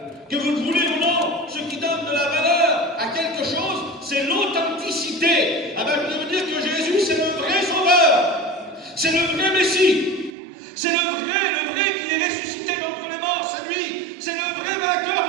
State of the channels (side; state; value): left; drops out; at 10.3 s